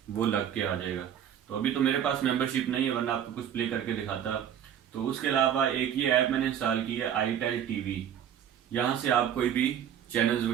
वो लग के आ जाएगा। तो अभी तो मेरे पास मेंबरशिप नहीं है, वरना आपको कुछ प्ले करके दिखाता। तो उसके अलावा एक ये ऐप मैंने इंस्टॉल की है, iTel TV। यहाँ से आप कोई भी चैनल्स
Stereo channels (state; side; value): quieter; left; 9.4 dB